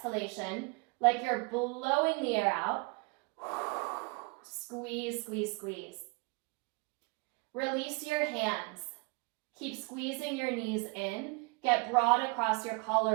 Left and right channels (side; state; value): left; quieter; 30.2 dB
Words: like you're blowing the air out. Squeeze, squeeze, squeeze. Release your hands. Keep squeezing your knees in. Get broad across your